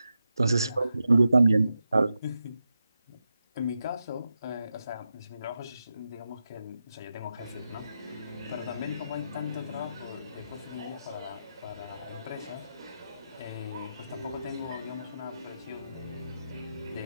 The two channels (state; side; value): inverted; both; correlation -0.88